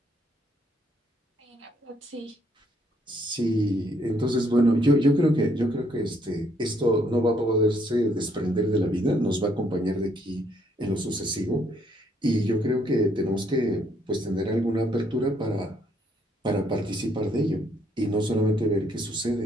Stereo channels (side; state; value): both; normal; correlation 0.70